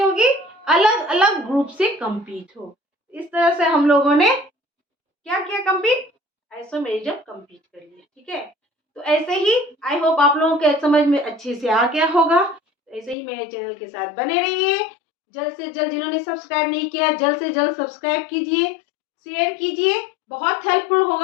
होगी? अलग अलग ग्रुप से कंप्लीट हो। इस तरह से हम लोगों ने क्या किया? कंप्लीट आइसोमेरिज्म कंप्लीट कर लिया, ठीक है। तो ऐसे ही आई होप आप लोगों के समझ में अच्छे से आ गया होगा। ऐसे ही मेरे चैनल के साथ बने रहिए। जल्द से जल्द, जिन्होंने सब्सक्राइब नहीं किया, जल्द से जल्द सब्सक्राइब कीजिए, शेयर कीजिए। बहुत हेल्पफुल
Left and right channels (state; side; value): drops out; right; at 13.2 s